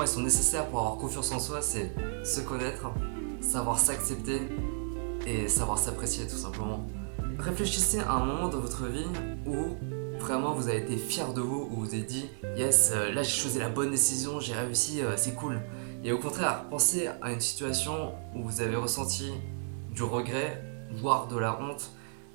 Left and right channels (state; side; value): silent; left; 56 dB below the other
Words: elles sont nécessaires pour avoir confiance en soi, c'est se connaître, savoir s'accepter et savoir s'apprécier tout simplement. Réfléchissez à un moment dans votre vie où vraiment vous avez été fier de vous, où vous avez dit yes, là j'ai choisi la bonne décision, j'ai réussi, c'est cool. Et au contraire, pensez à une situation où vous avez ressenti du regret, voire de la honte,